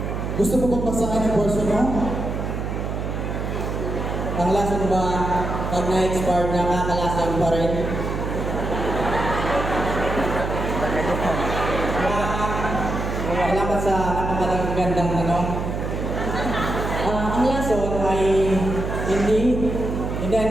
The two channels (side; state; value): right; noise; hum, 3 dB below the sound